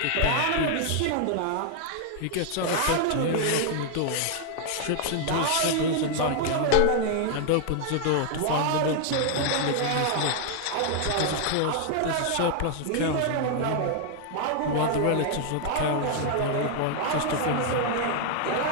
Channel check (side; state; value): both; different; correlation 0.00